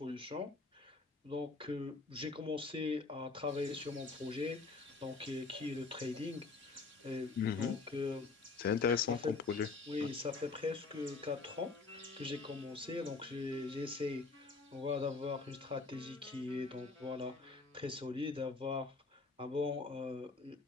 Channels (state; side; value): quieter; right; 4.1 dB